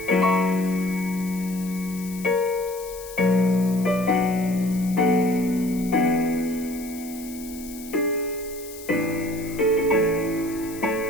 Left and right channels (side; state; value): left; noise; hiss, 16 dB below the sound